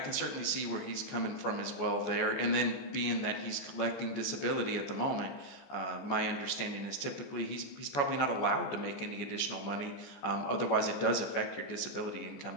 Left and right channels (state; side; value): late; right; 14 ms